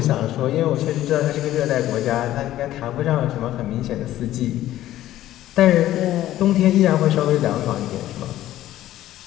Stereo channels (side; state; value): right; quieter; 13.8 dB